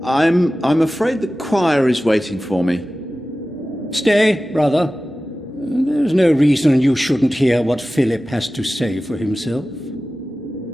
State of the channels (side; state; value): both; normal; correlation 0.96